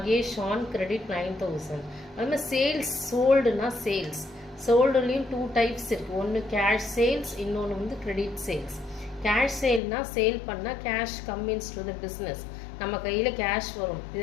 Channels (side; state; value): right; drops out; at 9.8 s